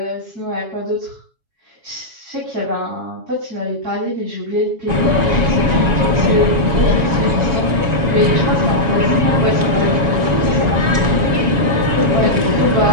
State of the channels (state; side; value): late; left; 7.2 ms